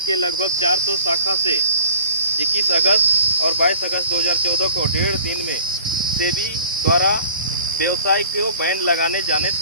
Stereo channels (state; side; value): inverted; both; correlation -0.48